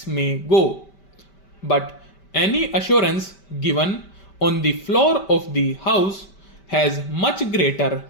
may go, but any assurance given on the floor of the House has much greater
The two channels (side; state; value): right; late; 5.1 ms